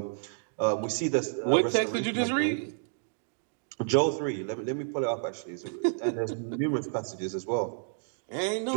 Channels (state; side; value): silent; left; digital silence